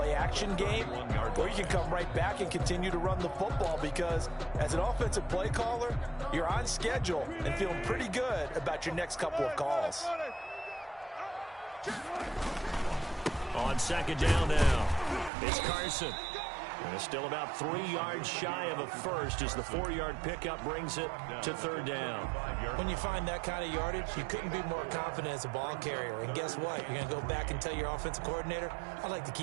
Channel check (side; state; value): left; drops out; at 15.3 s